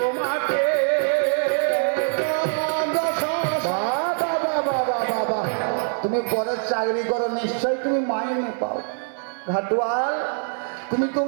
বাবা, তুমি পরে চাকরি করো, নিশ্চয়ই তুমি মাইনে পাও। ঘাটুয়াল, তুমি তো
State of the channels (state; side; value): silent; left; 62 dB below the other